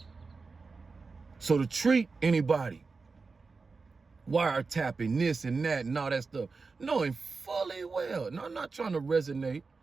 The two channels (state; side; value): quieter; left; 4.3 dB